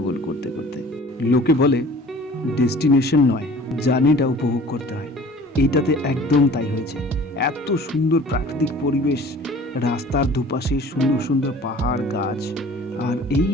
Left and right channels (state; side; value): normal; both; correlation 0.47